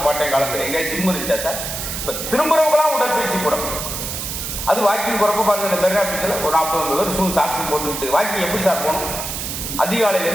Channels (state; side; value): noise; right; hiss, 5 dB below the sound